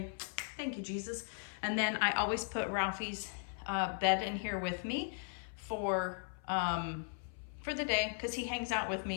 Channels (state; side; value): silent; right; 53 dB below the other